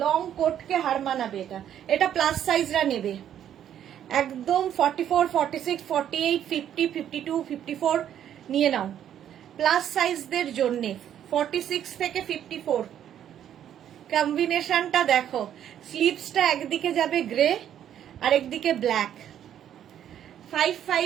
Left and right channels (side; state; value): left; quieter; 10.2 dB